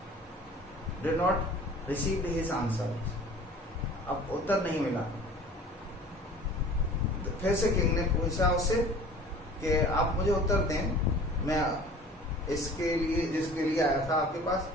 did not receive his answer, अब उत्तर नहीं मिला। फिर से किंग ने पूछा उससे कि आप मुझे उत्तर दें, मैं इसके लिए जिसके लिए आया था आपके पास,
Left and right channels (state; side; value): normal; both; correlation 0.45